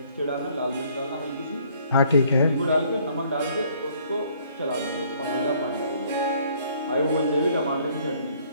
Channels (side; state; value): both; inverted; correlation -0.62